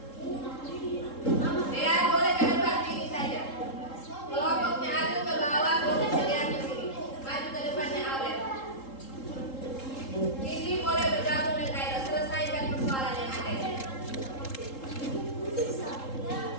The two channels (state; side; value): late; right; 3.7 ms